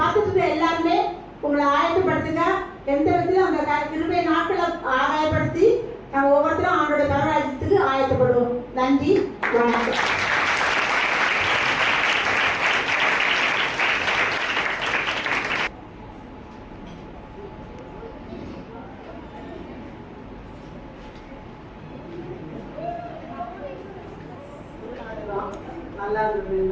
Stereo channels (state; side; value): identical; both; correlation 1.00